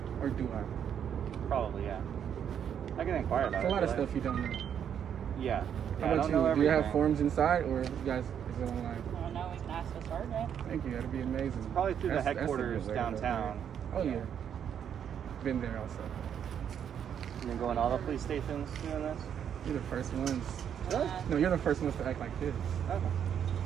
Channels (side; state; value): left; quieter; 8.6 dB